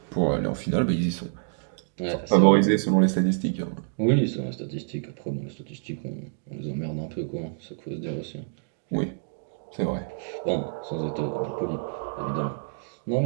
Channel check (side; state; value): left; silent; digital silence